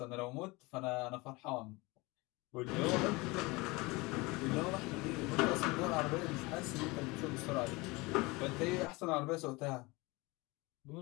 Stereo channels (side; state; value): right; quieter; 24.1 dB